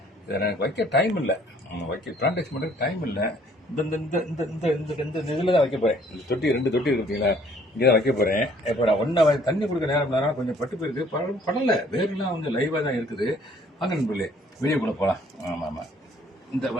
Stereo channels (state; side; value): normal; both; correlation 0.60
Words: இதை எனக்கு வைக்க டைம் இல்லை, வைக்க பிளான்டேஷன் பண்ணுறதுக்கு டைம் இல்லை. இந்த இந்த இந்த இந்த இந்த இந்த இதில் தான் வைக்க போகிறேன். இந்த தொட்டி 2 தொட்டி இருக்கு பார்த்தீங்களா, இங்கே தான் வைக்க போகிறேன். இப்போ நான் ஒன்றா தண்ணி கொடுக்க நேரம் கொஞ்சம் பட்டு போயிருக்கு, படலை, வேறுலாம் கொஞ்சம் லைவாக தான் இருக்குது. வாங்க நண்பர்களே, வீடியோ கூட போகலாம். ஆமாம் ஆமாம், இந்த